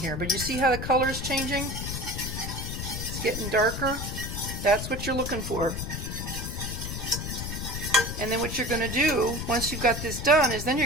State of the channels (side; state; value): left; noise; rumble, 5 dB below the sound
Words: but you see how the color is changing? It's getting darker. That's what you're looking for. And then what you're going to do, once you've got this done, is then